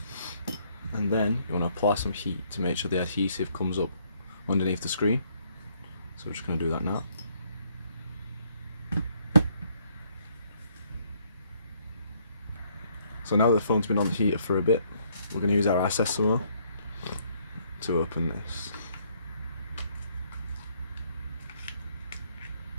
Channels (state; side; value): inverted; both; correlation -0.67